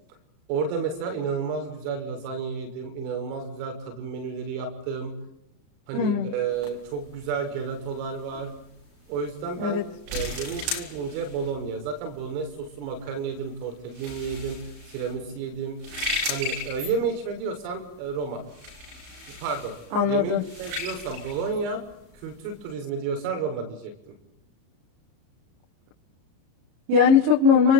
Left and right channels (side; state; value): left; late; 34 ms